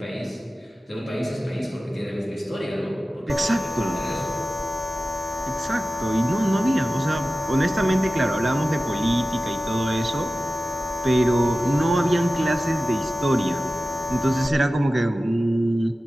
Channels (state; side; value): normal; both; correlation 0.96